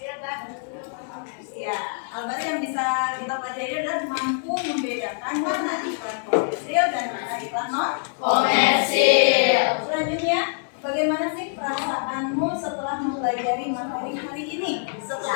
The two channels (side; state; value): right; silent; 62 dB below the other